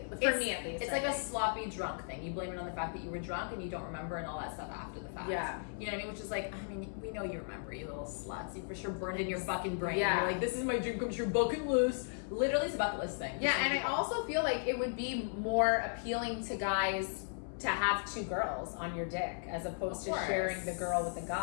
For me, at least. It's like a sloppy drunk thing. You blame it on the fact that you were drunk and you don't remember and all that stuff after the fact. Yeah. You know what I mean? Which is like, I mean, we know you remember, you little sluts. You for sure burned in your fucking brain. Yeah. You're like, this is my dream come true bucket list. Literally, it's a bucket list thing. Yeah, and I also feel like it would be more appealing to guys to have 2 girls on your dick as opposed to sharing the girl with the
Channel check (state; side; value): silent; right; 54 dB below the other